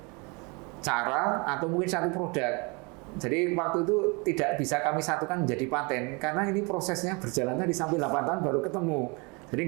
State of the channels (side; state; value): left; quieter; 29.8 dB